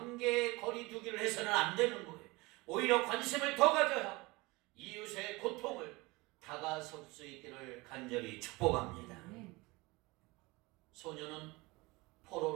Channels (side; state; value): left; quieter; 23.4 dB